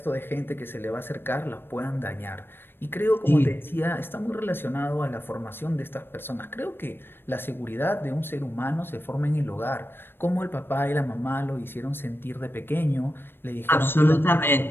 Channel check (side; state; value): right; late; 0.10 ms